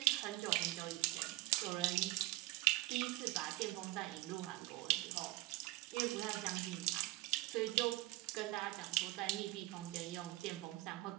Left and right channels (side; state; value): left; quieter; 19.7 dB